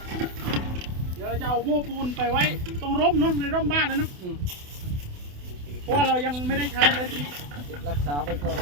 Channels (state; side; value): late; left; 28 ms